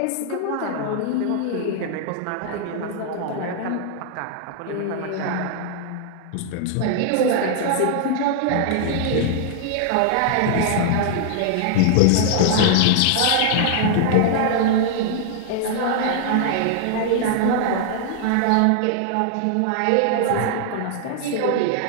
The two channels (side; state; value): both; different; correlation -0.01